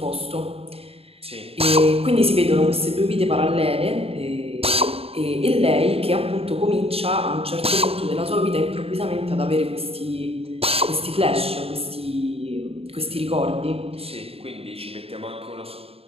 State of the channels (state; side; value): late; left; 0.28 ms